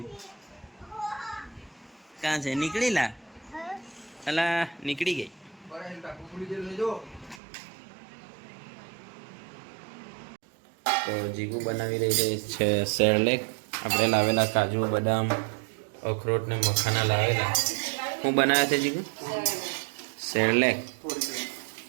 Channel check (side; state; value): left; drops out; at 7.4 s